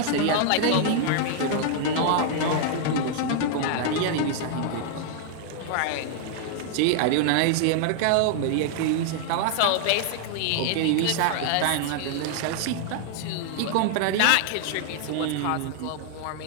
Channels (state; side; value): different; both; correlation 0.00